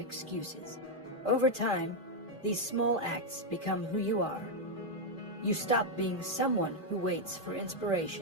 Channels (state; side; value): normal; both; correlation 0.01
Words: Over time, these small acts become who you are. You stop being someone who waits for